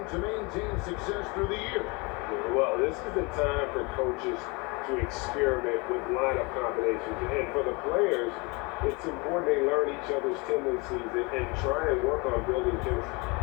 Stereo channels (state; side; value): quieter; right; 28.0 dB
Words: maintain success through the year? Well, this is the time for coaches to experiment with lineup combinations. And for the players, it's important they learn each other's tendencies and try and work on building chemistry.